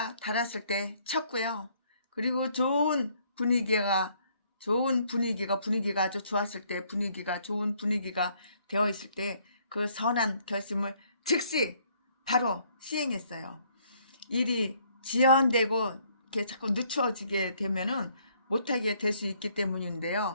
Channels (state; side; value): inverted; both; correlation -0.65